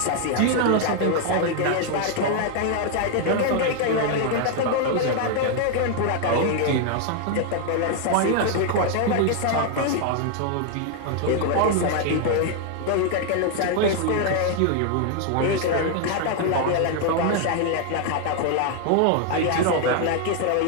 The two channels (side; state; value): both; different; correlation 0.00